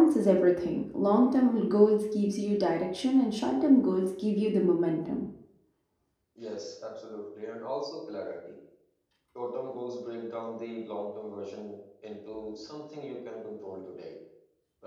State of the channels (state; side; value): identical; both; correlation 1.00